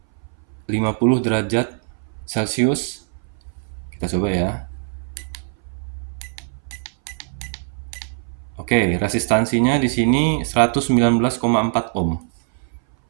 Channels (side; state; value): left; silent; 60 dB below the other